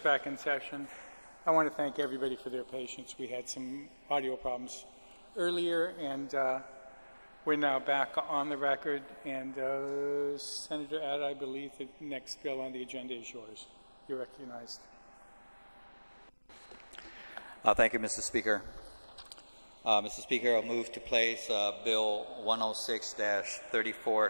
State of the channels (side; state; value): both; inverted; correlation -1.00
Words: in session. I want to thank everybody for their patience. We had some audio problems earlier, and we're now back on the record. And Senator Add, I believe the next bill on the agenda is yours. You're recognized. Thank you, Mr. Speaker. Mr. Speaker, I'll move to place Bill 106-34